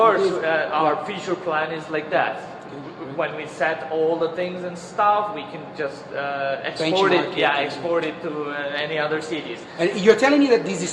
our future plan is like that. When we set all the things and stuff, we can just export it. Benchmark it, Yeah, export it to any other cities. And you're telling me that these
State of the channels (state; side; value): identical; both; correlation 1.00